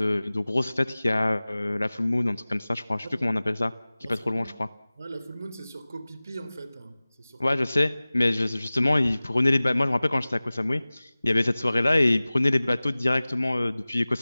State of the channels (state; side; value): inverted; both; correlation -0.99